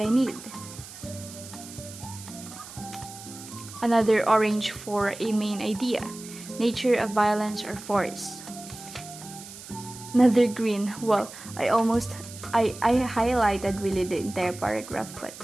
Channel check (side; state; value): right; noise; hiss, 15 dB below the sound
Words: need. Another orange for a main idea, nature of violence or force. Another green, well, I highlighted really the entire paragraph, but